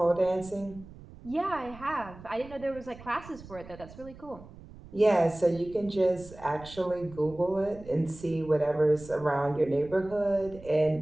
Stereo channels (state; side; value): noise; right; rumble, 18 dB below the sound